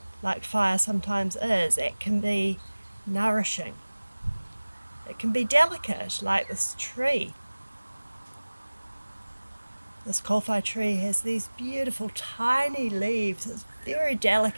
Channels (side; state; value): both; inverted; correlation -1.00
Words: like fire sometimes is. It can be nourishing. It can be delicate like this tree. This Kōwhai tree has these beautiful tiny leaves. It's very